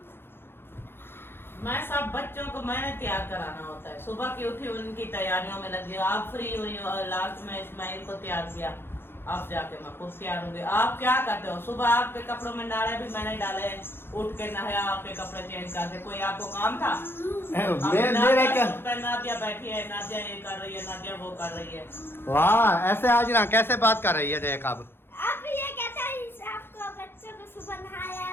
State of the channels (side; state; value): right; late; 0.11 ms